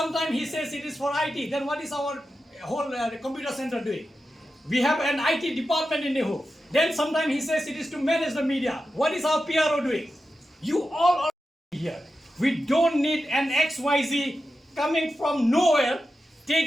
he says it is for IT, then what is our whole computer center doing? We have an IT department in NEHU. Then sometimes he says it is to manage the media. What is our PRO doing? You all are here. We don't need an XYZ coming from nowhere,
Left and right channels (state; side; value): normal; both; correlation 0.91